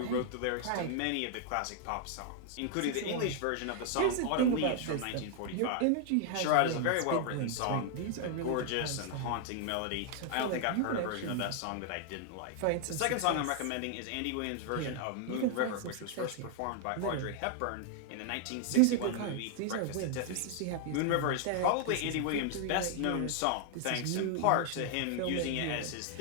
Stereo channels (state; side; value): different; both; correlation 0.00